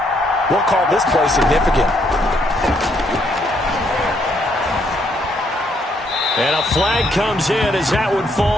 we'll call this play significant. And a flag comes in as that one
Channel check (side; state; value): both; normal; correlation 0.72